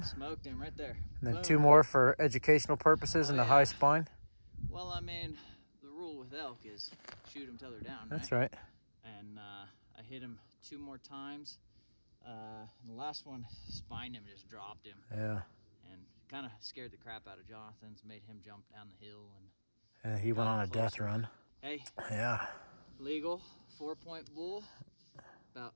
Smoked him right there. And then Boom. 2 more for educational purposes in the high spine? Well, I mean, the rule with elk is shoot them till they're down, That's right. And I hit him 2 more times. The last one spined him, just dropped him. Yeah. And kind of scared the crap out of Jonathan's, made him jump down the hill. And he went on a death run. Hey. Yeah. Legal 4-point bull, about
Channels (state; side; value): inverted; both; correlation -1.00